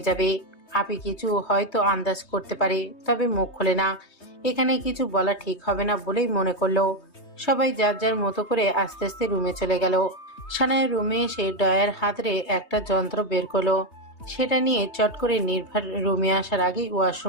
যাবে। আপি কিছু হয়তো আন্দাজ করতে পারে, তবে মুখ খোলে না। এখানে কিছু বলা ঠিক হবে না বলেই মনে করলো। সবাই যার যার মতো করে আস্তে আস্তে রুমে চলে গেল। সানায়া রুমে এসে ডয়ার হাতরে একটা যন্ত্র বের করলো। সেটা নিয়ে চট করে নির্ভার রুমে আসার আগেই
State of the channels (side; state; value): right; late; 3.2 ms